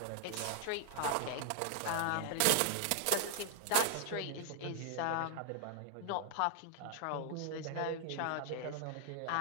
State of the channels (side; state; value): both; different; correlation 0.00